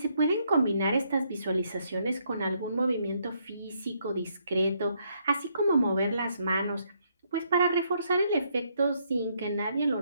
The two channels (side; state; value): both; inverted; correlation -0.73